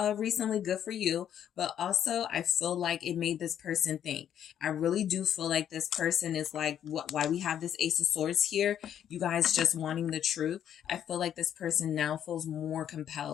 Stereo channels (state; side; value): quieter; right; 9.8 dB